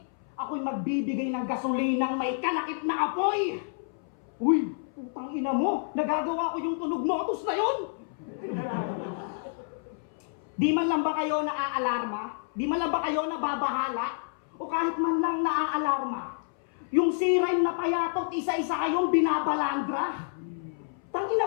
Ako'y magbibigay ng gasolinang may kalakip na apoy. Uy, putang ina mo, nagagawa ko yung tunog motus na yun. Di man lang ba kayo naaalarma? Di man lang ba kayo nababahala? O kahit man lang naaalarma? Yung siren na payatot, isa-isa kayong binabalandra?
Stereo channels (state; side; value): silent; right; 59 dB below the other